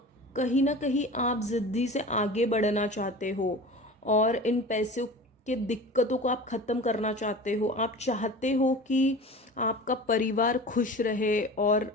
कहीं ना कहीं आप ज़िद्दी से आगे बढ़ना चाहते हो और इन पैसों के दिक्कतों को आप ख़त्म करना चाहते हो। आप चाहते हो कि आपका परिवार खुश रहे और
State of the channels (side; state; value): both; normal; correlation 0.36